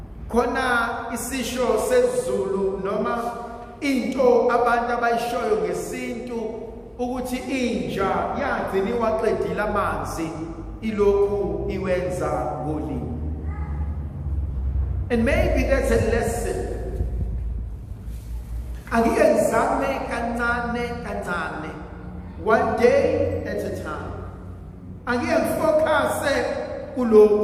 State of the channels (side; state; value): both; identical; correlation 1.00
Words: Khona isisho sesiZulu noma into abantu abayishoyo ngesintu ukuthi inja yagcina iwaqedile amanzi ilokhu iwenza ngolimi. And maybe that's a lesson. Angike ngizame kancane, one day at a time. Angike ngifocuse